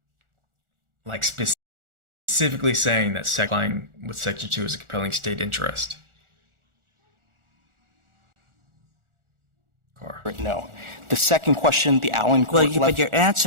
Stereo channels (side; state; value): left; late; 1.4 ms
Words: that complying with Section 2 is a compelling state interest. No. The second question, the Allen court. Well, but you're